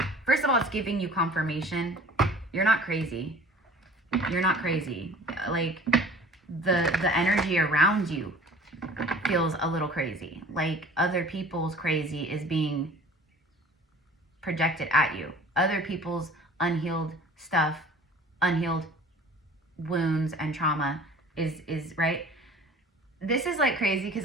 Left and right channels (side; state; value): both; normal; correlation 0.46